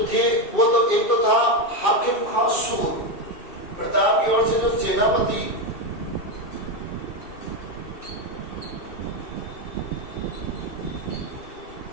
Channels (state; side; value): late; right; 2.7 ms